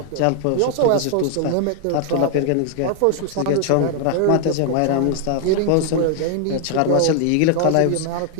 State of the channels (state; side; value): different; both; correlation 0.00